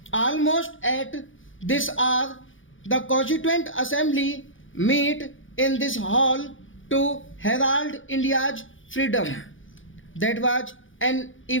almost at this hour, the Constituent Assembly meet in this hall to herald India's freedom. That was an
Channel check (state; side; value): late; right; 0.57 ms